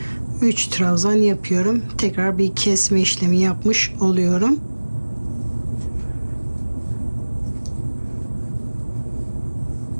3 trabzan yapıyorum. Tekrar bir kesme işlemi yapmış oluyorum.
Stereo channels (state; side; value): inverted; both; correlation -1.00